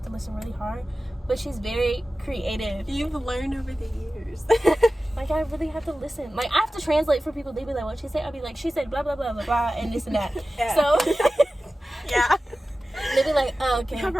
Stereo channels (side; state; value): both; normal; correlation 0.95